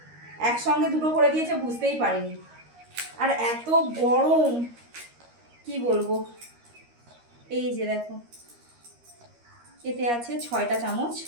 একসঙ্গে দুটো করে দিয়েছে, বুঝতেই পারিনি। আর এত গরম কি বলবো। এই যে দেখো, এতে আছে 6টা চামচ।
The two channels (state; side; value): late; left; 13 ms